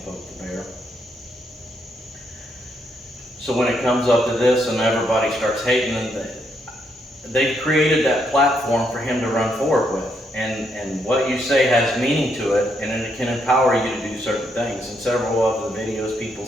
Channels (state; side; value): normal; both; correlation 0.76